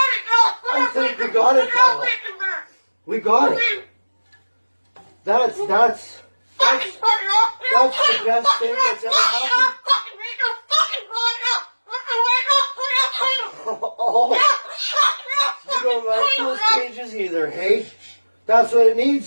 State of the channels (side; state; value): both; inverted; correlation -1.00